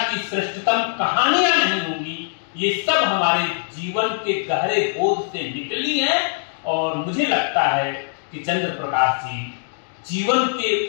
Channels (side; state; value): right; silent; digital silence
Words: की श्रेष्ठतम कहानियां नहीं होंगी। ये सब हमारे जीवन के गहरे बोध से निकली हैं। और मुझे लगता है कि चंद्र प्रकाश जी जीवन के